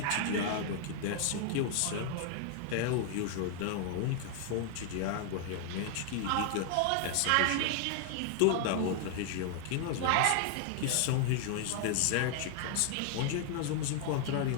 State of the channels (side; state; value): both; different; correlation 0.00